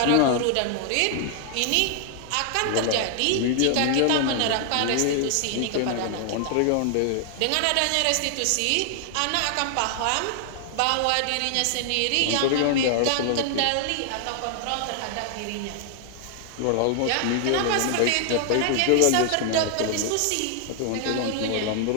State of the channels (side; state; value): both; different; correlation 0.00